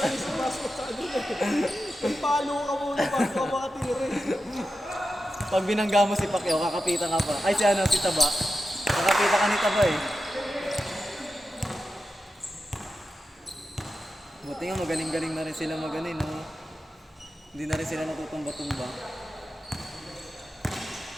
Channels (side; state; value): both; normal; correlation 0.91